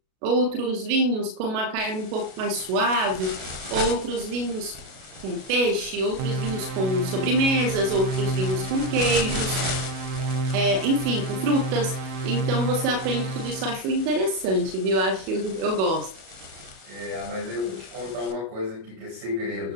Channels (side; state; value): left; late; 37 ms